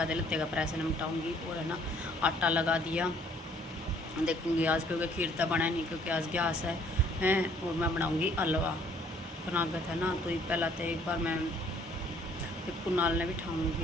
लत्ते का प्रेस निपटाऊँगी। और है ना आटा लगा दिया, देखूँगी आज क्योंकि खीर तो बना नहीं क्योंकि आज गैस है हैं। और मैं बनाऊँगी हलवा। कनागत है ना, तो पहला तो एक बार मैं कुनाल ने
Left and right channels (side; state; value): both; normal; correlation 0.61